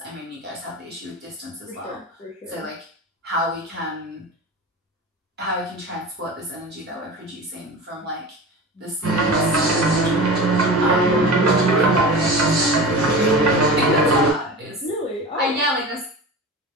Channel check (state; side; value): normal; both; correlation 0.31